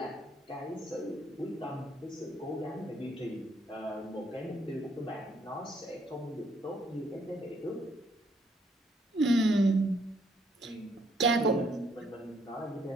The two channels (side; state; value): both; normal; correlation 0.68